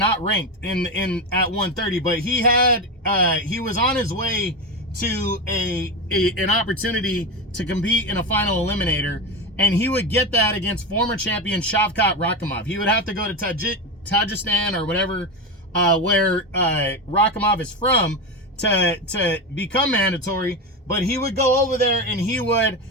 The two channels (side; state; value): both; normal; correlation 0.18